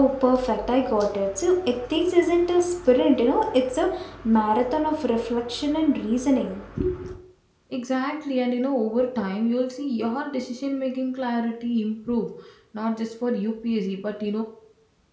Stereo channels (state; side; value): identical; both; correlation 1.00